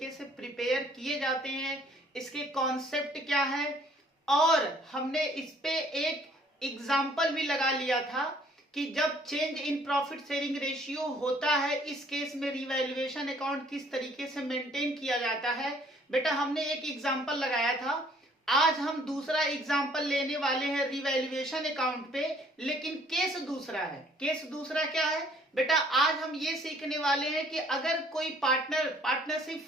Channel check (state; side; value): normal; both; correlation 0.60